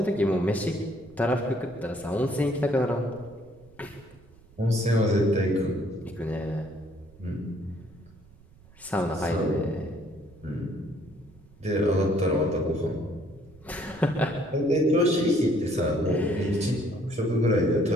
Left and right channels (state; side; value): noise; right; rumble, 25 dB below the sound